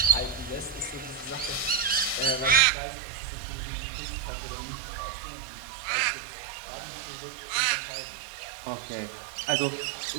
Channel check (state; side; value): drops out; left; at 2.6 s